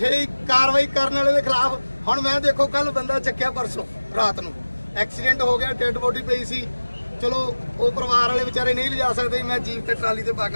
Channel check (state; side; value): inverted; both; correlation -1.00